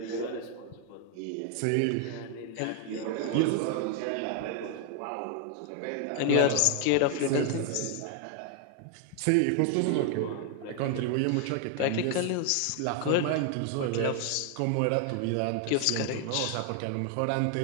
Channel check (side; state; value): both; different; correlation 0.00